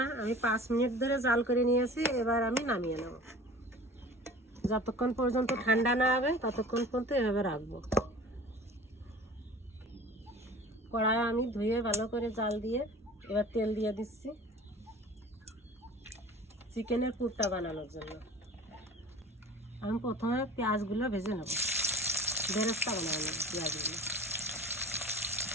আমি 5 মিনিট ধরে জাল করে নিয়েছি। এবার আমি নামিয়ে নেব। যতক্ষণ পর্যন্ত ঠান্ডা না হবে ততক্ষণ পর্যন্ত এভাবে রাখবো। কড়াই আমি ধুয়ে ভালো করে জাল দিয়ে এবার তেল দিয়ে দিচ্ছি চিকেনের পুরটা বানানোর জন্য। আমি প্রথমে পেঁয়াজগুলো ভেজে নেব, বেরেস্তা বানাবো নেব পেঁয়াজগুলো।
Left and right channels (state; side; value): normal; both; correlation 0.42